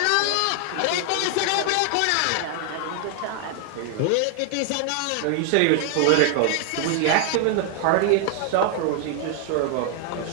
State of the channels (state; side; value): different; both; correlation 0.00